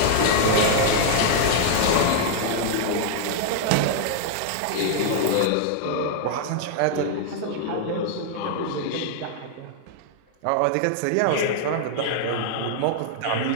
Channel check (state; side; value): different; both; correlation -0.01